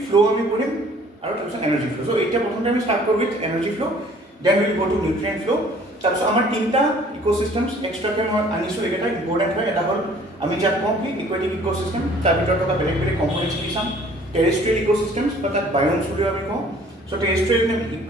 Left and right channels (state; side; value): normal; both; correlation 0.54